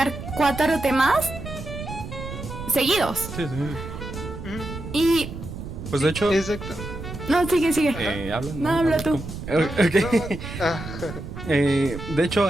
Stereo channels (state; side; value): noise; right; rumble, 9 dB below the sound